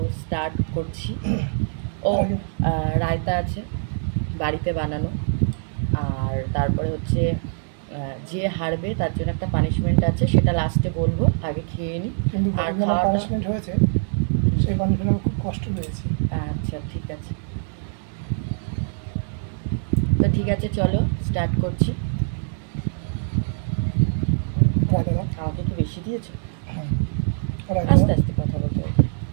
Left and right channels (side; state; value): left; silent; 63 dB below the other